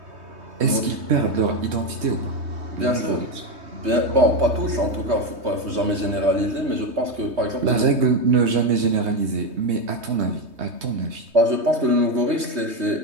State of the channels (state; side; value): late; left; 3.2 ms